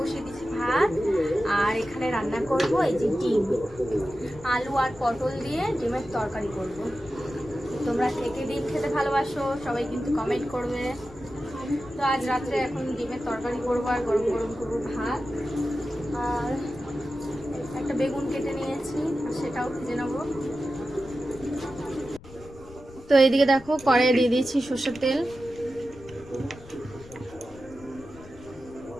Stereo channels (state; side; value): noise; left; rumble, 19 dB below the sound